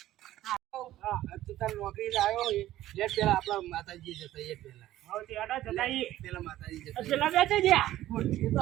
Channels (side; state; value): left; quieter; 14.3 dB